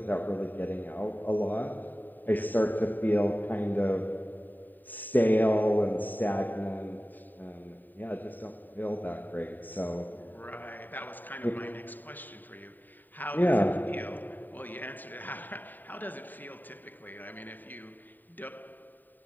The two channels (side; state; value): right; late; 0.089 ms